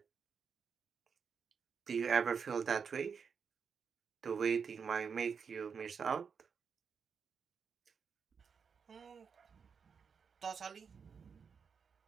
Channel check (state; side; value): quieter; left; 6.2 dB